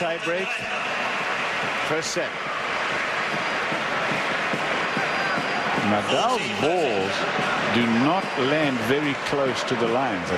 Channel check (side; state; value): both; identical; correlation 1.00